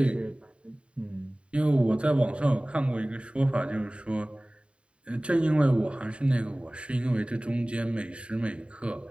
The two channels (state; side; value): late; left; 0.058 ms